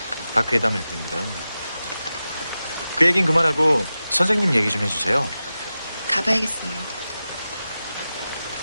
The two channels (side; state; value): both; inverted; correlation -0.93